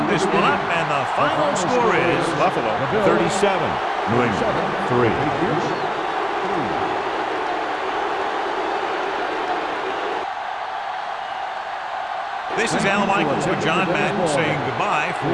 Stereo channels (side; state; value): both; identical; correlation 1.00